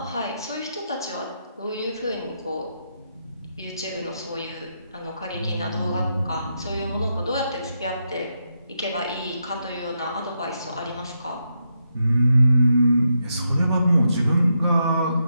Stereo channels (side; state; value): both; inverted; correlation -0.82